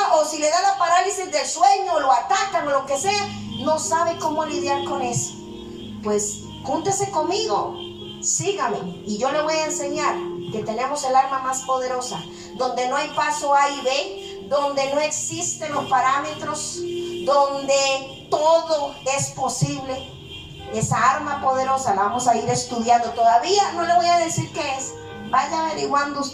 o si le da la parálisis del sueño, o lo atacan, o lo que sea, no sabe cómo lidiar con eso. Pues júntese conmigo, sígame, y yo le voy a enseñar que tenemos el arma más poderosa, donde no hay paso A y B, donde no existen los parámetros, donde todo es posible. Esa arma poderosa la vamos a ir estudiando. Todavía no le voy a decir qué es, vaya averiguando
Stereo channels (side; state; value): both; identical; correlation 1.00